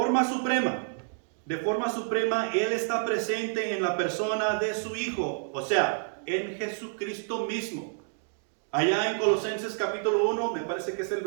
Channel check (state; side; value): silent; left; digital silence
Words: suprema, Él está presente en la persona de su Hijo, o sea, en Jesucristo mismo. Allá en Colosenses capítulo 1, me parece que es el